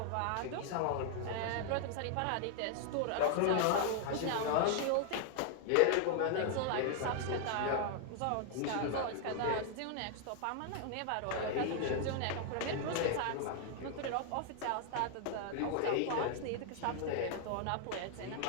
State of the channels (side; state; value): both; different; correlation 0.00